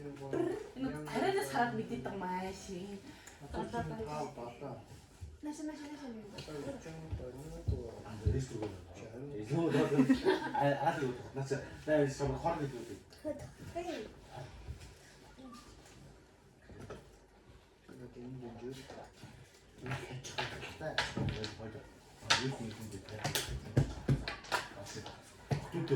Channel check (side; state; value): both; identical; correlation 1.00